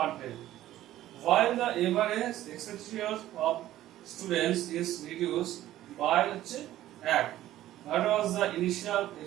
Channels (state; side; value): quieter; left; 13.9 dB